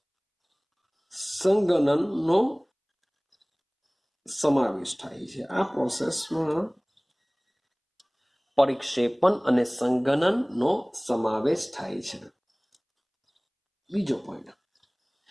સંઘનનનો સમાવેશ થાય છે. આ પ્રોસેસમાં પરિક્ષેપણ અને સંઘનનનો સમાવેશ થાય છે. બીજો પોઈન્ટ,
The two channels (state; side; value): identical; both; correlation 1.00